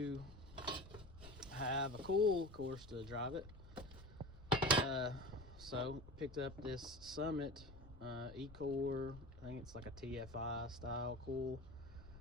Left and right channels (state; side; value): noise; left; rumble, 17 dB below the sound